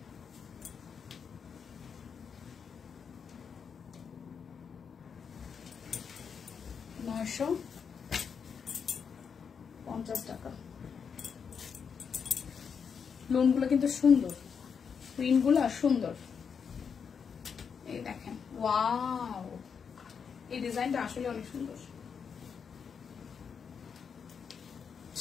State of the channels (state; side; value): quieter; right; 6.5 dB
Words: $950 টাকা। লোনগুলো কিন্তু সুন্দর, প্রিন্টগুলো সুন্দর, এই দেখেন। ওয়াও, এই ডিজাইনটা আসলে অনেক সুন্দর।